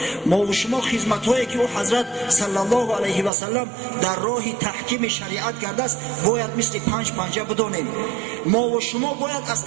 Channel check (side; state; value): left; drops out; at 3.3 s